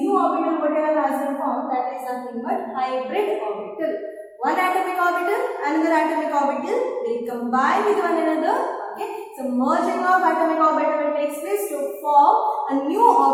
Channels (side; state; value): both; identical; correlation 1.00